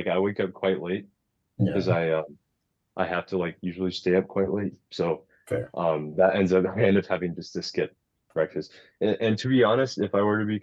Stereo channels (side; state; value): both; identical; correlation 1.00